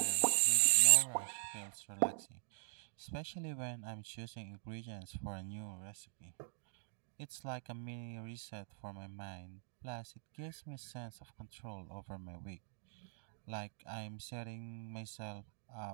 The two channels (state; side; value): silent; left; digital silence